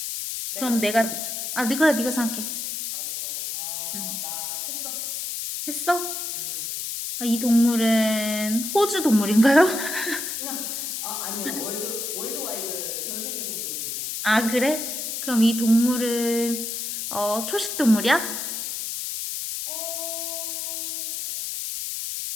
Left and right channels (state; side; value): noise; left; hiss, 4 dB below the sound